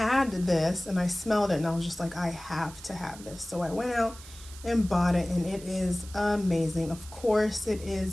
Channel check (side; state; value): right; noise; hiss, 18 dB below the sound